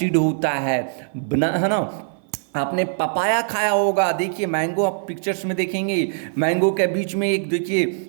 होता है ना। आपने पपाया खाया होगा। देखिए मैंगो आप पिक्चर्स में देखेंगे, मैंगो के बीच में एक देखिए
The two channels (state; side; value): silent; left; 55 dB below the other